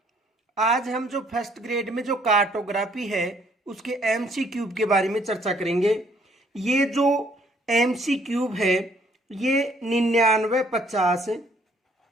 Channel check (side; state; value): both; normal; correlation 0.64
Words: आज हम जो फर्स्ट ग्रेड में जो कार्टोग्राफी है उसके एमसी क्यूब के बारे में चर्चा करेंगे। ये जो एमसी क्यूब है ये 9950